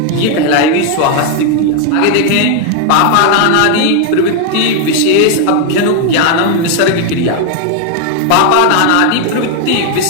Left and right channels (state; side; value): different; both; correlation 0.00